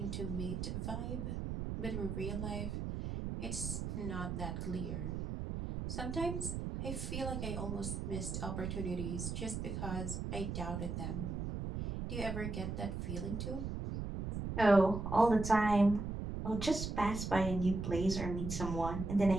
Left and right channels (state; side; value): noise; right; rumble, 4 dB below the sound